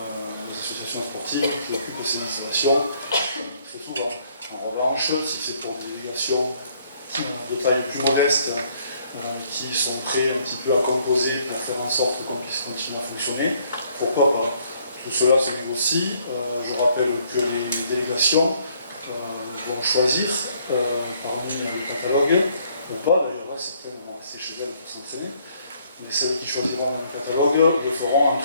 associations sportives qui occupent ces installations très souvent. En revanche, si c'est pour des délégations de taille plus modeste qui sont prêts un petit peu à composer pour faire en sorte qu'on puisse continuer à fonctionner, pourquoi pas? Tout cela se négocie. Je rappelle que les délégations vont choisir parmi le catalogue, ou pas d'ailleurs, certaines vont rester chez elles pour s'entraîner, mais celles qui choisiront dans le catalogue le feront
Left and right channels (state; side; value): inverted; both; correlation -0.65